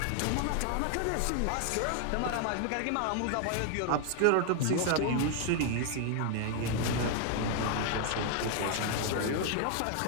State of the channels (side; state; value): both; different; correlation 0.00